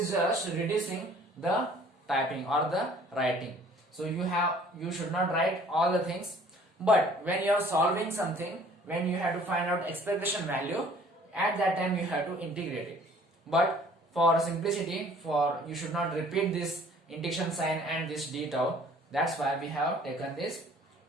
just reducing the typing or the writing. So you should not write all the things, but when you are solving something, when you have to find out expectation value, at that time you have to integrate it. But for simplicity, you should not repeat this integration sign and this d tau. That's why we have taken this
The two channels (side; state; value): both; normal; correlation 0.54